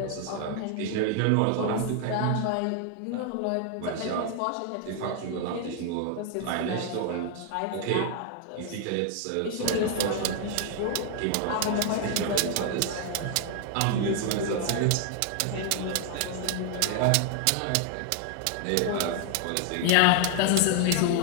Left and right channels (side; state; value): both; different; correlation 0.00